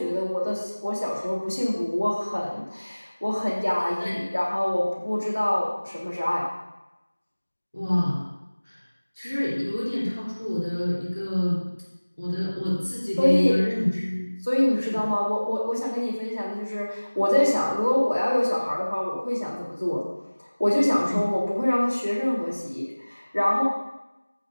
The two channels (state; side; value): inverted; both; correlation -1.00